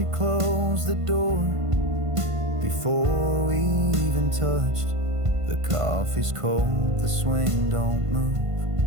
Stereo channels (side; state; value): left; late; 1.5 ms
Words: closed the door before we even touched. The coffee's cold, the swing don't